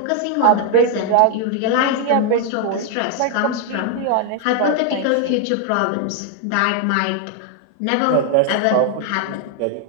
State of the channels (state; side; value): different; both; correlation 0.00